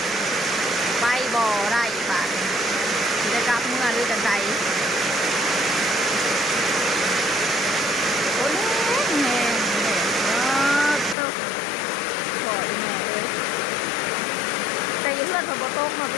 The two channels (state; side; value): drops out; right; at 11.2 s